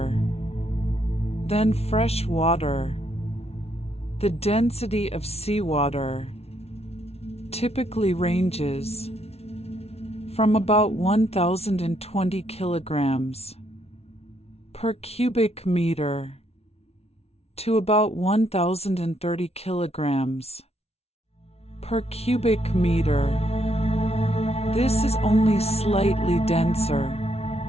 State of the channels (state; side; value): late; right; 0.30 ms